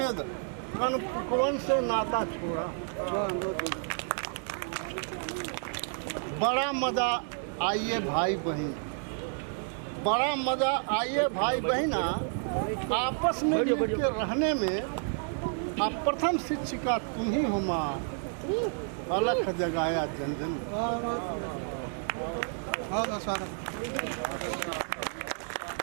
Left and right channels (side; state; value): left; silent; 57 dB below the other